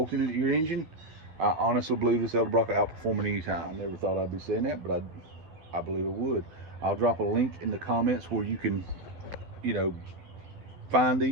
it to your engine, I honestly believe this Edelbrock will outperform it anytime. I never thought I'd be saying that, but I believe it would. I'll drop a link in the comments where you can, find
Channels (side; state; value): left; late; 12 ms